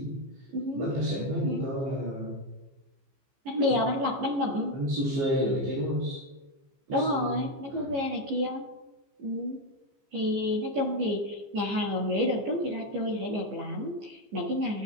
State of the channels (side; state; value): left; late; 15 ms